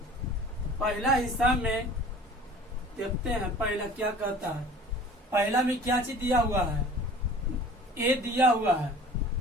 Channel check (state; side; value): normal; both; correlation 0.44